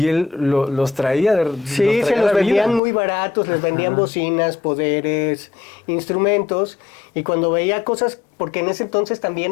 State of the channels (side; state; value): right; drops out; at 2.8 s